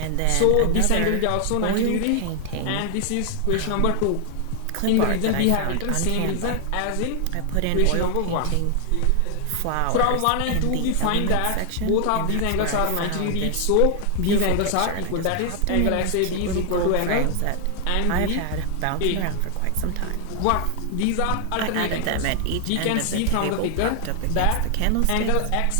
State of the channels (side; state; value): both; different; correlation 0.00